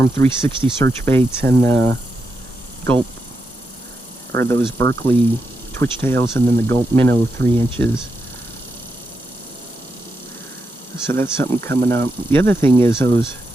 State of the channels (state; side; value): normal; both; correlation 0.85